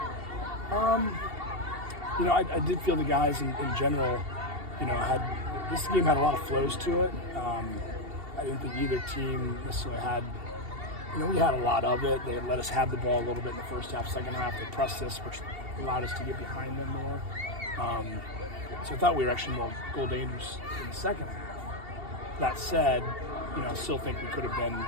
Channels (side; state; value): left; late; 2.7 ms